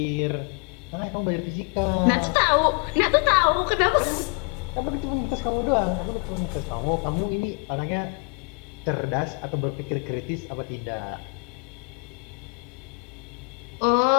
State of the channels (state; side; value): quieter; right; 35.3 dB